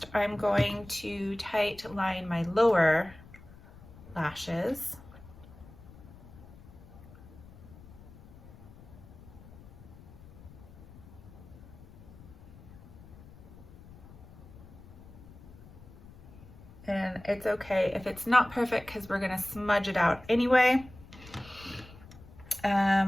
I'm going to tight line my lower lashes. And it's okay if it's not perfect because we're gonna smudge it out anyway.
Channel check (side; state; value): left; noise; rumble, 19 dB below the sound